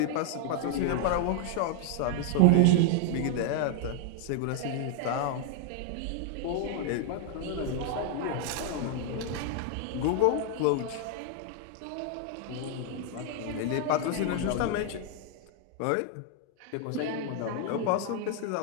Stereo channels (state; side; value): different; both; correlation 0.00